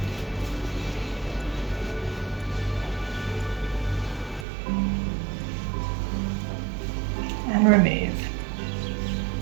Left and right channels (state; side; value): drops out; left; at 4.5 s